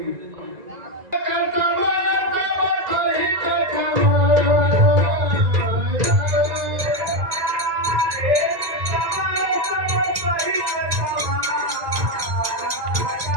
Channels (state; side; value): late; left; 1.9 ms